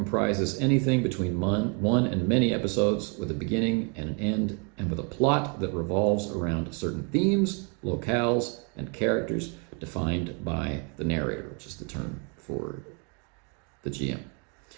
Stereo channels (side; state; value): left; quieter; 36.3 dB